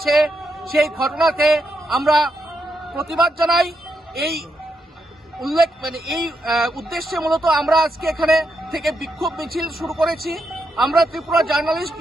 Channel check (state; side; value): normal; both; correlation 0.82